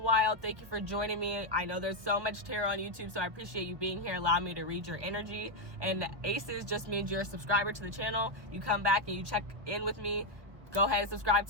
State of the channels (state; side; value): late; left; 1.4 ms